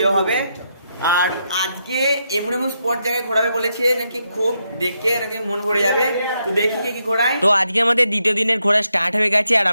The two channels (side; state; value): both; inverted; correlation -0.81